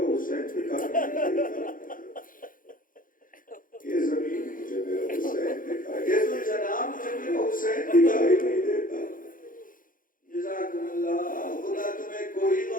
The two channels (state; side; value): late; right; 0.40 ms